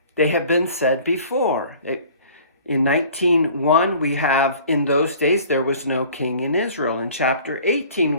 they have been said before. In 19:1, we have, "In those days there was no king in Israel." In chapter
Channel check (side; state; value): both; inverted; correlation -0.49